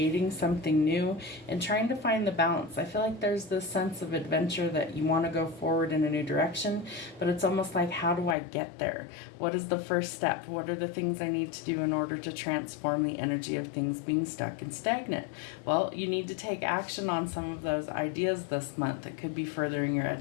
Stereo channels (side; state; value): right; drops out; at 8.3 s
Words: something new and trying to find the balance. I feel like there's this sense of adventure that you want to go forward in a new direction, but it's almost like, how do I get there? What is the first step? What are the things I need to do in order to transform the energy of things being stuck and stagnant? Well, you need to take action on some of those ideas this month. It could be furthering your